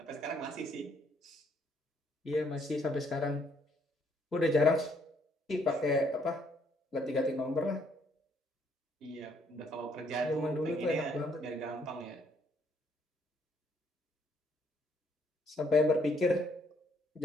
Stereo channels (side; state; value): both; normal; correlation 0.68